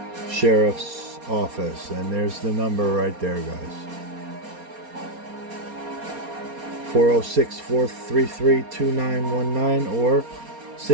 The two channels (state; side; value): late; left; 4.3 ms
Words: Sheriff's Office. And there's the number right there, guys. 406-433-2919 or